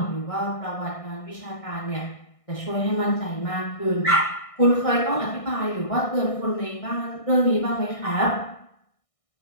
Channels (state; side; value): late; right; 1.6 ms